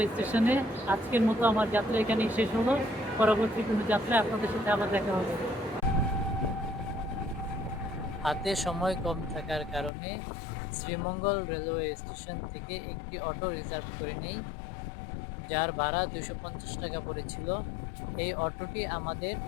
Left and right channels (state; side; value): drops out; right; at 9.9 s